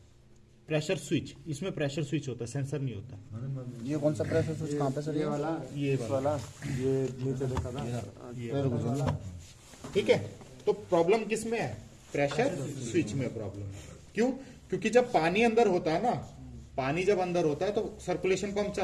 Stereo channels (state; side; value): identical; both; correlation 1.00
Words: प्रेशर स्विच, इसमें प्रेशर स्विच होता है, सेंसर नहीं होता। ये कौन सा प्रेशर स्विच कहाँ पे सर, ये वाला, ये नीचे देखा था। ठीक है, तो प्रॉब्लम किस में है, प्रेशर स्विच में प्रॉब्लम है। क्यों, क्योंकि जब पानी अंदर होता है ना, पानी जब अंदर होता है तो सर्कुलेशन पंप